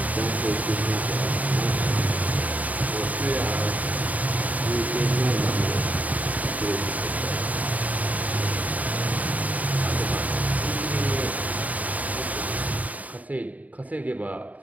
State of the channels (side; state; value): left; late; 0.072 ms